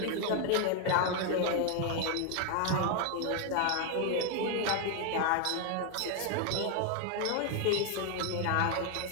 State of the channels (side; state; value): both; different; correlation 0.00